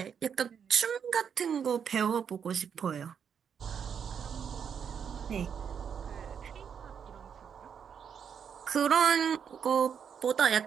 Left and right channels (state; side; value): quieter; left; 7.4 dB